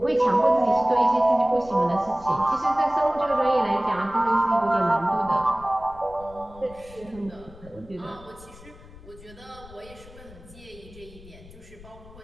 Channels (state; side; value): noise; left; rumble, 20 dB below the sound